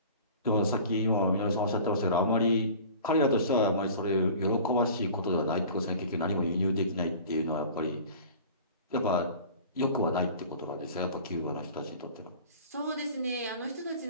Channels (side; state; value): both; inverted; correlation -0.42